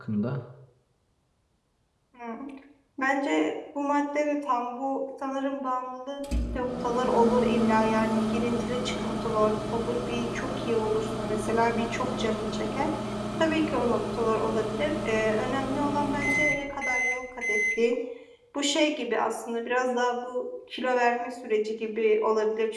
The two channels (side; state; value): both; identical; correlation 1.00